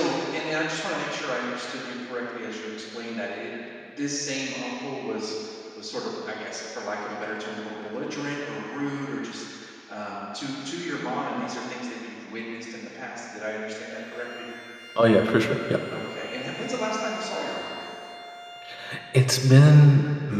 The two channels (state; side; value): identical; both; correlation 1.00